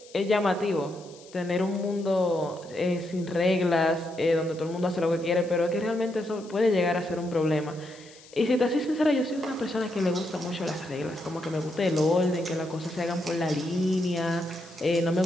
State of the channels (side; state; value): left; noise; hiss, 23 dB below the sound